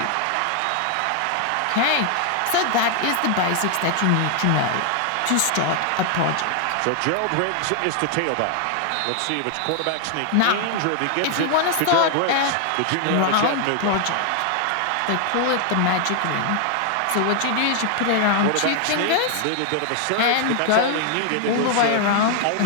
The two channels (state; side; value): different; both; correlation 0.00